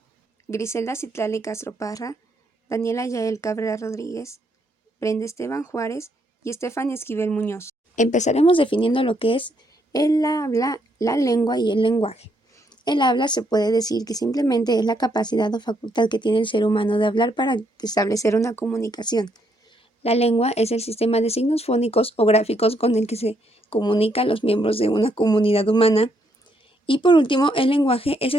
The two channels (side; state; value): both; normal; correlation 0.74